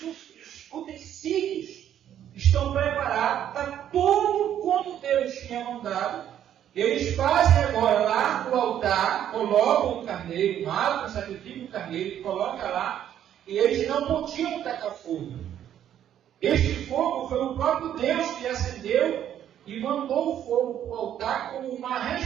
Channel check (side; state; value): left; quieter; 10.5 dB